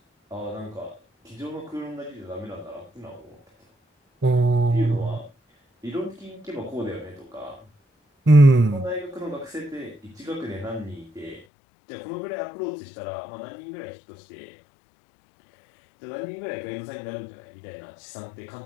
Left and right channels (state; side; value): drops out; right; at 11.4 s